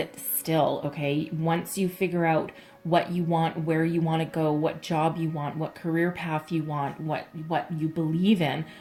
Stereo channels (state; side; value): identical; both; correlation 1.00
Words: still, okay? Once you figure out what you want, where you want to go, what job you want, what career path you want, what you believe in,